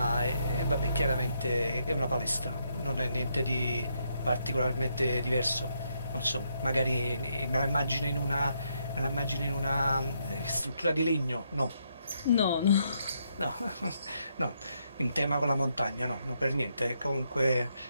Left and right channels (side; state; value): both; inverted; correlation -0.77